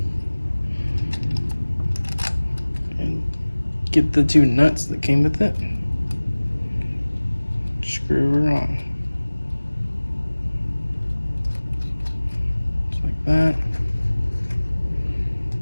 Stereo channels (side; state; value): both; inverted; correlation -1.00